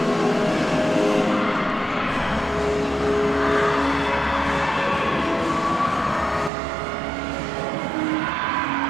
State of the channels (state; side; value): drops out; left; at 6.5 s